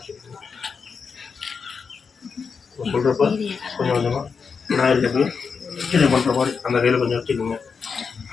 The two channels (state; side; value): quieter; right; 5.6 dB